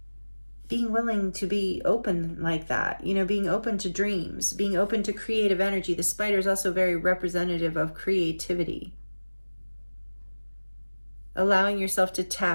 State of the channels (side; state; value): both; inverted; correlation -1.00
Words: being willing to be open like that, you know, being open to dreams, being open to creative energy. The spider is also very representative of creativity. Allowing yourself to